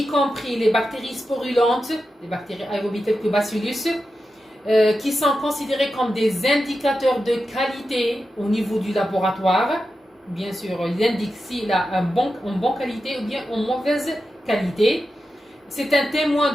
compris les bactéries sporulentes, les bactéries aérobies telles que Bacillus, qui sont considérées comme des indicateurs de qualité au niveau du laboratoire. Bien sûr, il indique s'il a en bonne qualité ou bien en mauvaise qualité. C'est un témoin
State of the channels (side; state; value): both; normal; correlation 0.90